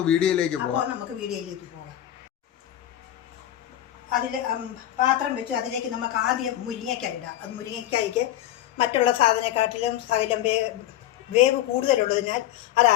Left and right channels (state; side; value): quieter; right; 12.8 dB